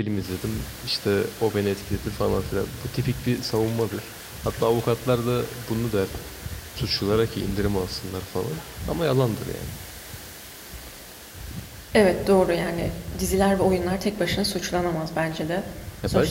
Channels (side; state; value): both; identical; correlation 1.00